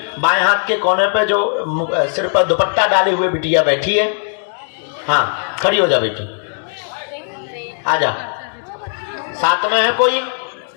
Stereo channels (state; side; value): silent; right; digital silence